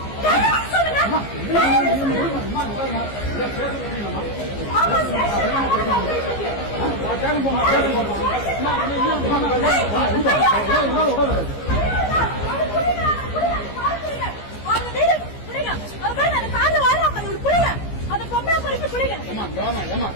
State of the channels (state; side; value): late; right; 15 ms